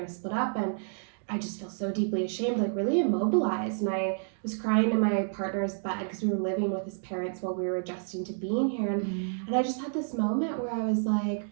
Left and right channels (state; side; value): silent; left; digital silence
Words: to split up. And I just feel so deeply ashamed, really immobilized. And I was crying in my partner's bed because we were living with his parents while we were adjusting to being here. And I just had this moment where I was